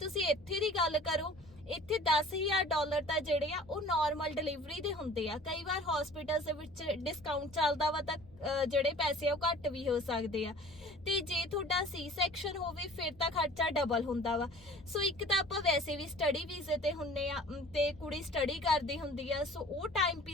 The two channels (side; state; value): both; normal; correlation 0.47